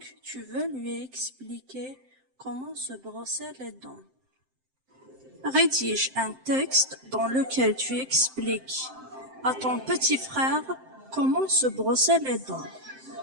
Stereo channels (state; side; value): late; left; 7.7 ms